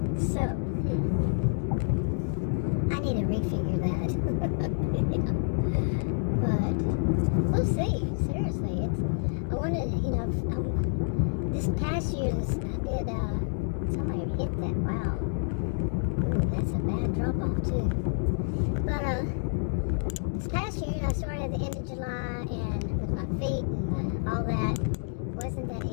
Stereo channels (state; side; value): silent; right; digital silence